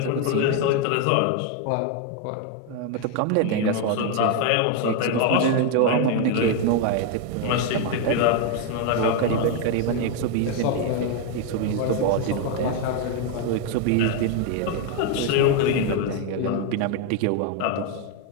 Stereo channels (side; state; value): both; different; correlation 0.01